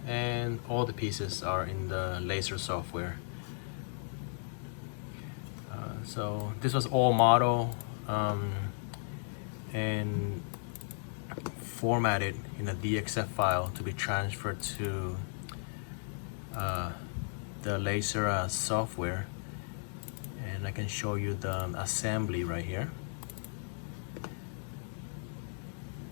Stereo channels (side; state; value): right; silent; digital silence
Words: and all the pieces are in the laser software. So this was all model and formatted in a DXF file to be transferred to the laser software, and I can show you the assembly right here.